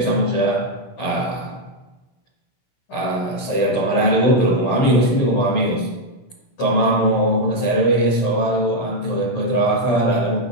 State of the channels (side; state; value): right; late; 16 ms